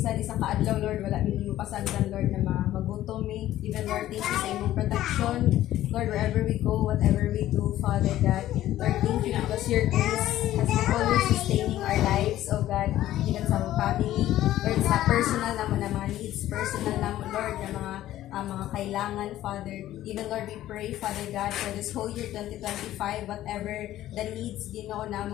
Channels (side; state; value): right; quieter; 13.7 dB